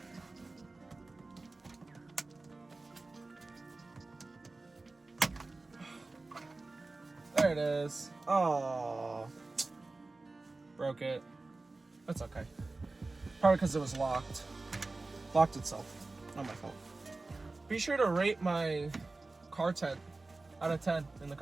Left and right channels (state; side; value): quieter; left; 3.4 dB